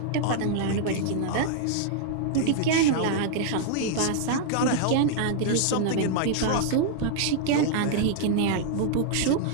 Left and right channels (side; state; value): both; different; correlation -0.01